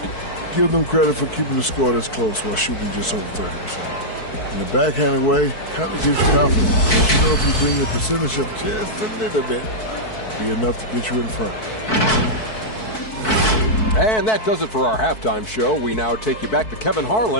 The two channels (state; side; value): late; right; 4.6 ms